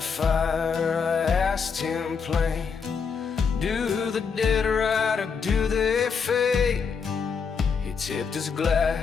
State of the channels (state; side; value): quieter; right; 5.9 dB